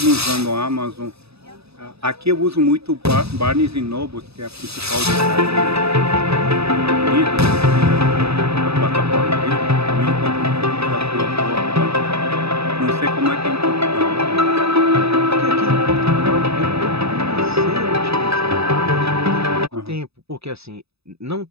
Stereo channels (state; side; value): late; left; 0.78 ms